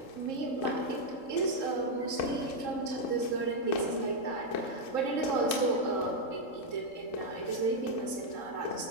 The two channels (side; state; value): right; late; 3.7 ms